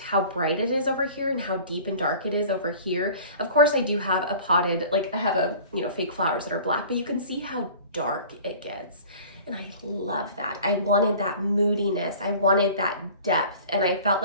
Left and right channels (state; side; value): inverted; both; correlation -0.44